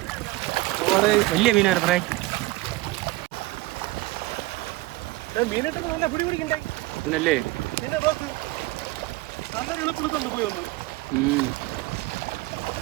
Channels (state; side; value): quieter; left; 20.1 dB